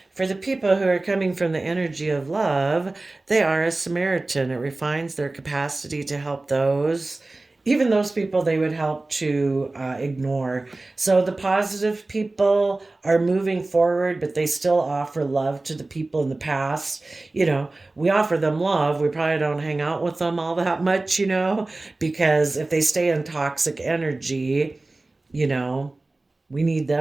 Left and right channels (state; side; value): quieter; left; 3.1 dB